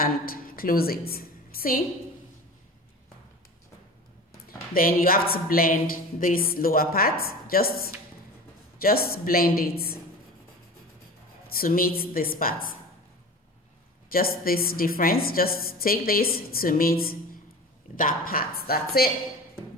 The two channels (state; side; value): normal; both; correlation 0.35